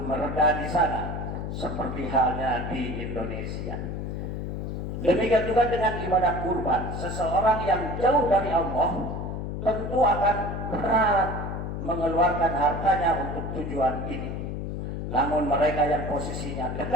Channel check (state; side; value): noise; left; hum, 4 dB below the sound